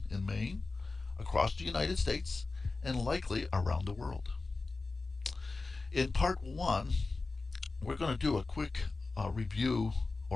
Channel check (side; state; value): right; quieter; 3.7 dB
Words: in Maine, across the United States, and likely around the world. In part one, we're going to do a quick review